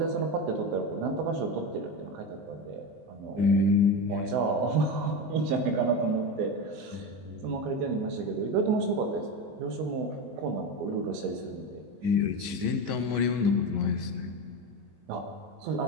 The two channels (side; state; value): left; late; 19 ms